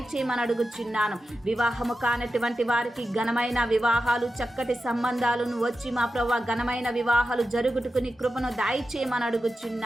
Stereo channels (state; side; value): normal; both; correlation 0.91